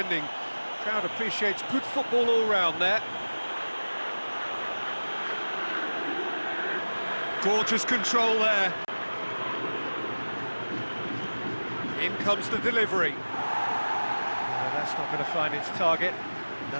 Crowd appreciates good football all round there. Gorgeous control there. In comes the delivery. It's not going to find its target.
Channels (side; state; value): both; inverted; correlation -1.00